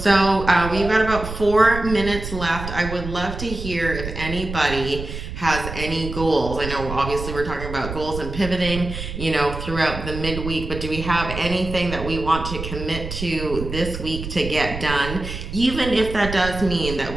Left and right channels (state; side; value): noise; right; rumble, 8 dB below the sound